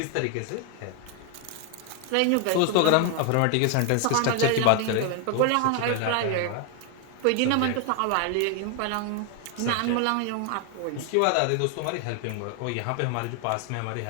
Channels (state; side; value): different; both; correlation 0.00